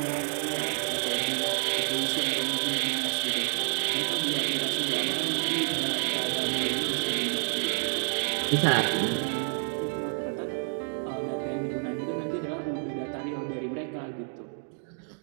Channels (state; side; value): silent; left; 59 dB below the other